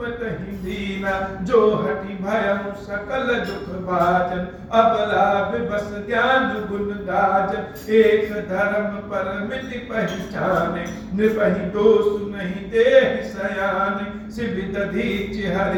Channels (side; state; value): both; identical; correlation 1.00